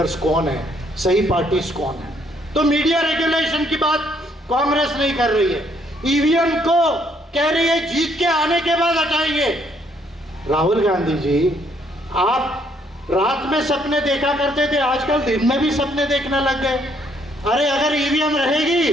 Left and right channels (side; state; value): both; normal; correlation 0.69